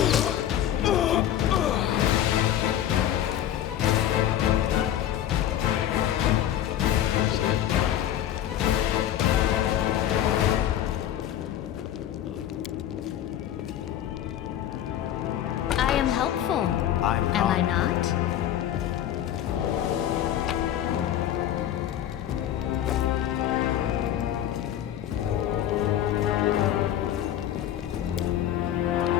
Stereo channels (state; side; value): quieter; right; 11.4 dB